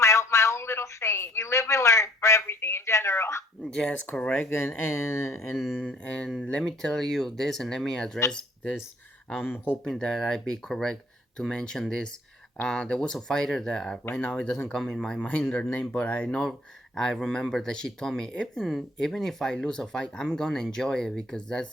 own little saying, you live and learn for everything in general. Yes, correct. And let me tell you this, and let me address this. I'm hoping that I be correct to mention this. There was a fighter that right now it doesn't come in my mind her name, but I remember that she told me even if I lose a fight, I'm gonna enjoy it because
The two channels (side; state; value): both; normal; correlation 0.59